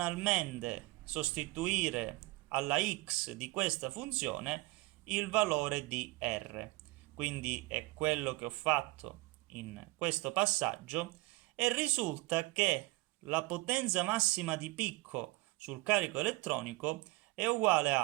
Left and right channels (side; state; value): left; quieter; 22.2 dB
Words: sostituire alla x di questa funzione il valore di r. Quindi è quello che ho fatto in questo passaggio e risulta che la potenza massima di picco sul carico elettronico è uguale